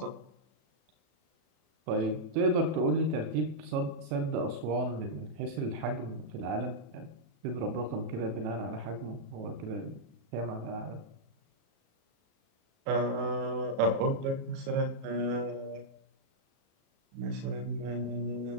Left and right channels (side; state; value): left; late; 37 ms